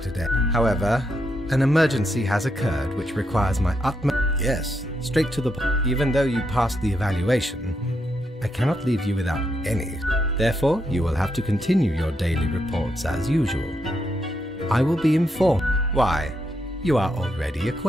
today. However, an emergency has occurred which requires my utmost... Yes, straight to the point. Even though you passed the evaluation, I cannot leave you without any. Therefore, you will have to continue your daily reports as usual. I will be informed. Why, you are already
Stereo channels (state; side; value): normal; both; correlation 0.81